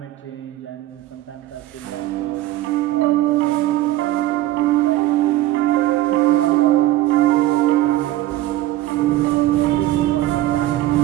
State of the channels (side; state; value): left; quieter; 15.7 dB